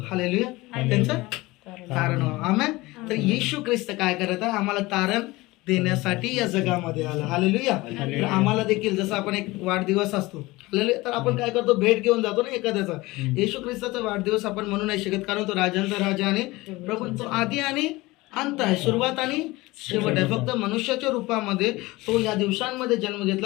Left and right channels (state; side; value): quieter; right; 20.8 dB